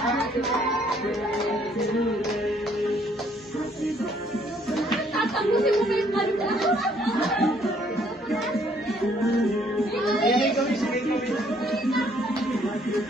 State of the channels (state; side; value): normal; both; correlation 0.65